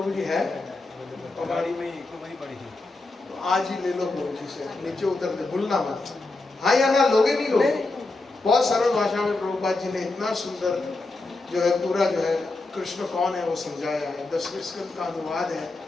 जी है, कबाड़ी में एक तो वही पड़ी थी। तो आज ही ले लो प्रभु जी से, नीचे उतर दे, भूलना मत। हाँ या ना लोगे नहीं लोगे? बहुत सरल भाषा में प्रभुपाद जी ने इतना सुंदर जो है पूरा जो है कृष्ण कौन है वो समझाया है। 10वें स्कंद का अनुवाद है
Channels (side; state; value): right; quieter; 3.2 dB